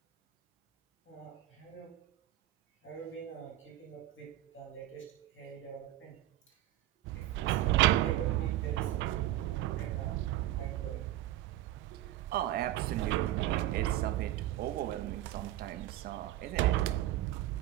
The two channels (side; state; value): left; quieter; 14.4 dB